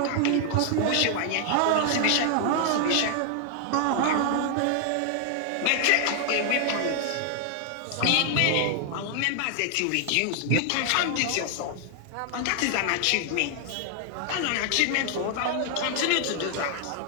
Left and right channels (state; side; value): different; both; correlation 0.00